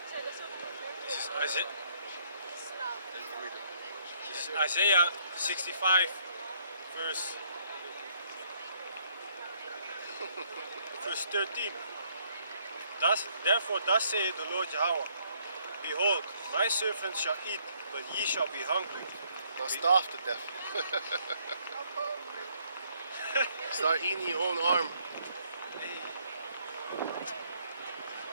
This is Isaiah 65, verse 13. Therefore thus saith the Lord Yahweh, Behold, my servants shall eat, but ye shall be hungry. Not starve to death. Start eating your own arm.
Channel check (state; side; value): inverted; both; correlation -0.67